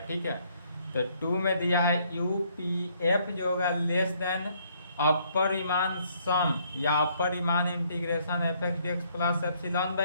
ठीक है। तो 2 में दिया है UPF जो होगा less than upper Riemann sum या upper Riemann integration fx/dx plus epsilon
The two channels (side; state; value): both; inverted; correlation -0.67